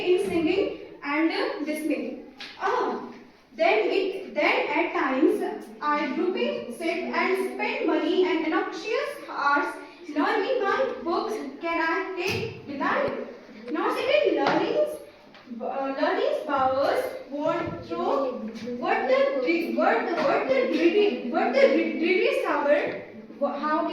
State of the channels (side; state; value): both; identical; correlation 1.00